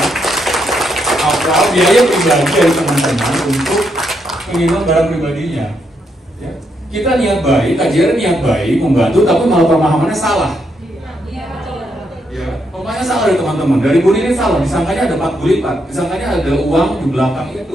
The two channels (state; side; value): normal; both; correlation 0.78